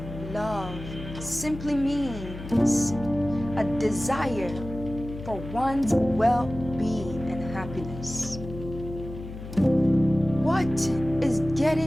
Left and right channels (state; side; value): noise; left; hum, 11 dB below the sound